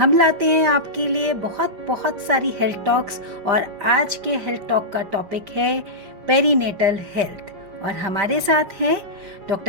लाते हैं आपके लिए बहुत सारी हेल्थ टॉक्स। और आज के हेल्थ टॉक का टॉपिक है पेरीनेटल हेल्थ। और हमारे साथ हैं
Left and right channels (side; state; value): left; late; 5.5 ms